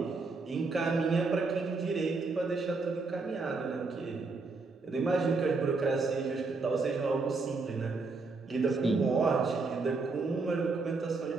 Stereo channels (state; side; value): quieter; left; 3.9 dB